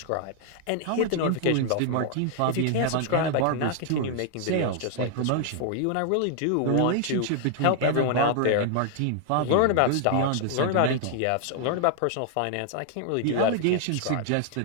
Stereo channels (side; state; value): both; different; correlation 0.00